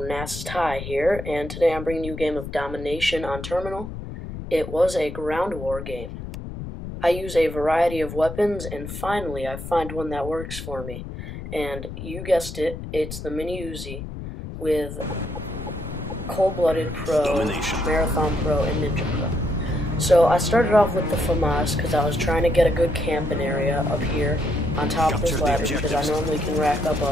Ty here, and today I'm bringing you a game of Domination on Terminal. It was a ground war game. I use a variety of weapons, and finally I find one that works for me. And you guessed it, it's the Mw2 with Cold-Blooded Pro, Marathon Pro, and Ninja Pro. So I started off with the FAMAS because I was trying to get a good camping area up here on top of this ladder because I normally can rack up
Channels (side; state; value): left; noise; rumble, 9 dB below the sound